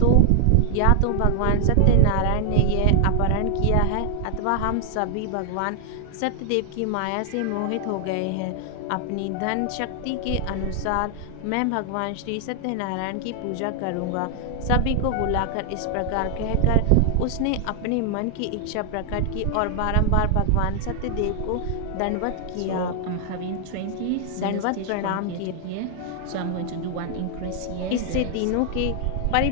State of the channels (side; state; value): both; different; correlation 0.00